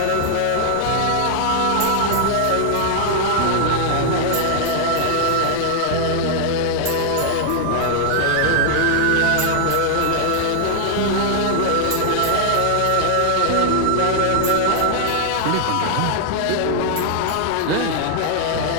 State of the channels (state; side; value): different; both; correlation 0.00